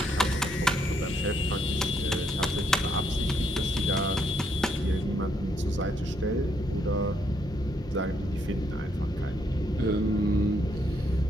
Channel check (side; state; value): both; normal; correlation 0.73